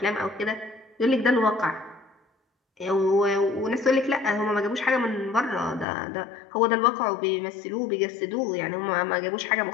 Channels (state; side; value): drops out; right; at 5.9 s